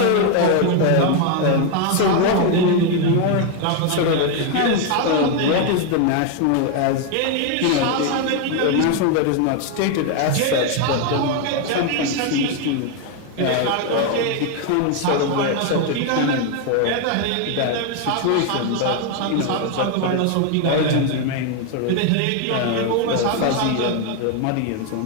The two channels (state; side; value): different; both; correlation 0.01